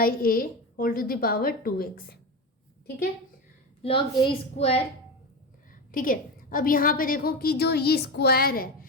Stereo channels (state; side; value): normal; both; correlation 0.20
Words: a whole to the power 2x। ठीक है, लॉग a स्क्वायर। ठीक है, अब यहाँ पे देखो कि जो ये स्क्वायर है,